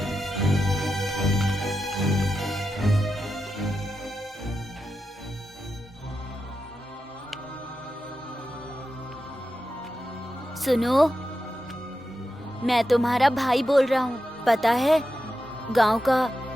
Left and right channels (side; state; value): both; normal; correlation 0.89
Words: सुनो, मैं तुम्हारा भाई बोल रहा हूँ। पता है गांव का